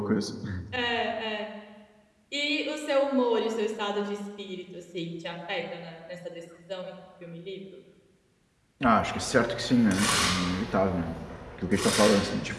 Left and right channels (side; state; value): both; identical; correlation 1.00